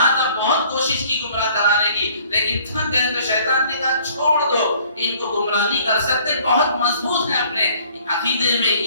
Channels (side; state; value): both; inverted; correlation -0.57